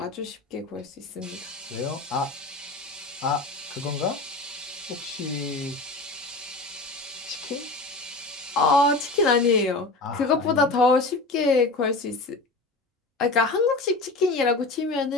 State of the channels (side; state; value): right; quieter; 3.2 dB